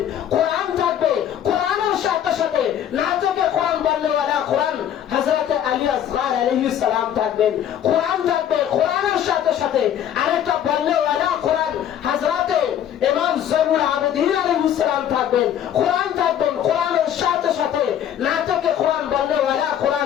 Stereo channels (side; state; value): right; quieter; 10.1 dB